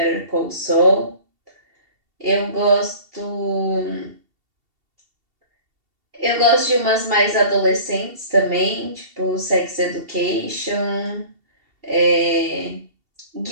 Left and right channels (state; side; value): late; left; 2.7 ms